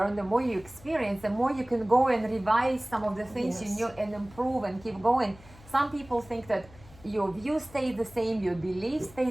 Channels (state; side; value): noise; left; hum, 22 dB below the sound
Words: the more you experience, the more you can go and revise some of the things you Yes. knew and improve and keep going. Some people think that your view stays the same, your beliefs stay